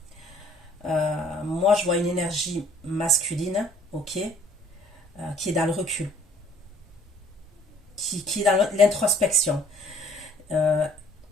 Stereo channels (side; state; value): both; normal; correlation 0.57